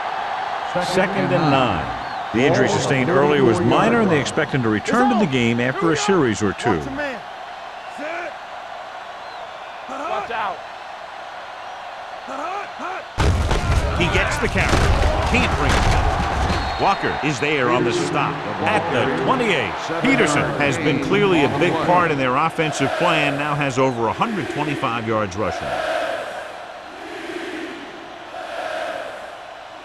Second and 9. The injury sustained earlier was minor, and they expect him to return to the game after a series or two. Watch out. He gets the carry. Can't bring it down. Walker is there on the stop at the 28. Peterson has been clearly a big part in their offensive plan, now has over 125 yards rushing.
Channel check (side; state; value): both; identical; correlation 1.00